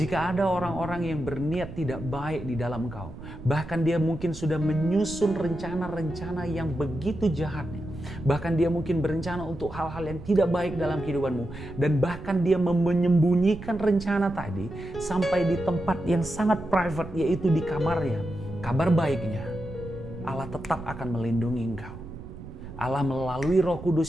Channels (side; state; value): right; noise; rumble, 13 dB below the sound